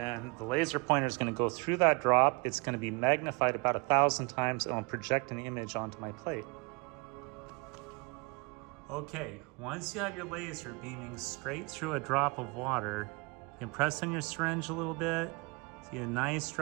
the laser pointer is going to go through that drop. It's going to be magnified about 1,000 times, and I'll project an image onto my plate. Okay, once you have your laser beaming straight through a drop of water, you can press on your syringe a little bit, see a nice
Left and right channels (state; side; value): quieter; left; 29.5 dB